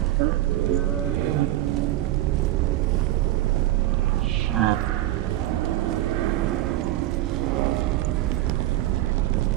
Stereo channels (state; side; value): quieter; left; 15.1 dB